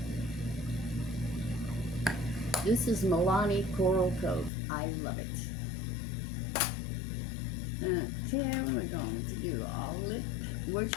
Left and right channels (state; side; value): drops out; right; at 4.5 s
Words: This is Milani Coral Cove. I love it. Okay, we're going to do all lip.